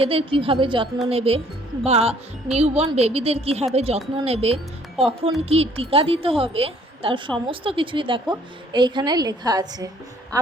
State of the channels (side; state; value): both; normal; correlation 0.60